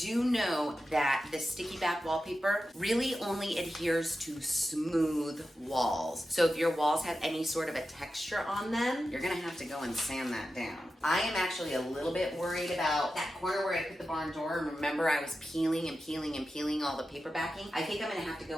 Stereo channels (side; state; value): both; normal; correlation 0.91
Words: know that the sticky back wallpaper really only adheres to smooth walls. So if your walls have any sort of a texture on them, you're gonna have to go and sand that down. I am actually a little bit worried about that corner where I put the barn door. Remember, I was peeling and peeling and peeling all the paper backing. I think I'm gonna have to